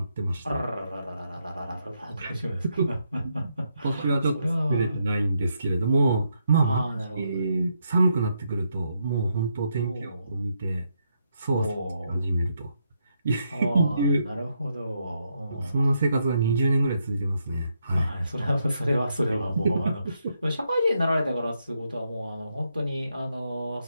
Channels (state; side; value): inverted; both; correlation -0.79